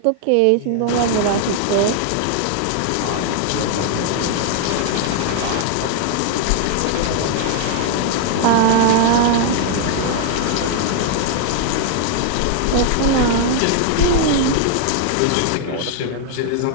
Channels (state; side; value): different; both; correlation 0.00